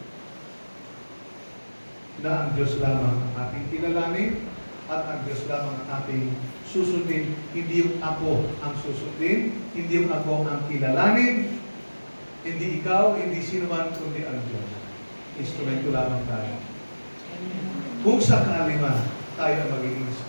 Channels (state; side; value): inverted; both; correlation -1.00